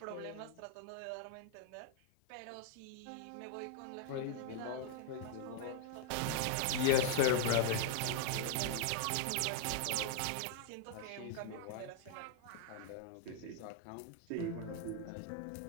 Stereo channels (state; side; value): different; both; correlation 0.00